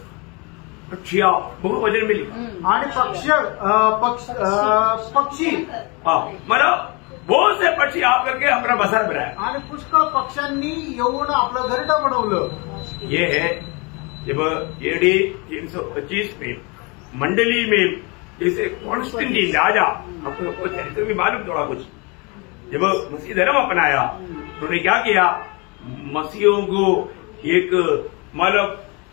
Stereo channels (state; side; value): quieter; right; 29.4 dB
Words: पक्षी बहुत वजन मिली. आणि पक्षी मतलब बहुत से पक्षी आकर के अपना बसर बनाया. आणि पुष्कळ पक्ष्यांनी येऊन आपलं घरटं बनवलं. ये है जब AD 325 में मंडली में जैसे कॉन्स्टेंटाइन राजा, आपको चरित्र भी मालूम थोड़ा कुछ, जब मसीह धर्म अपनाया उन्होंने क्या किया. मसीहों को एक मतलब